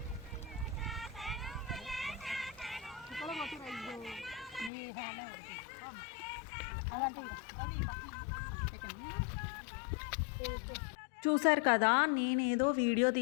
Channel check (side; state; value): right; drops out; at 4.7 s